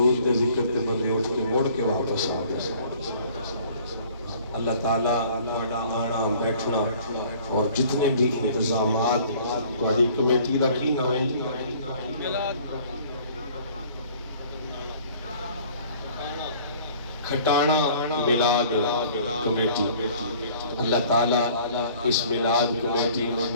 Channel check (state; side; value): inverted; both; correlation -0.53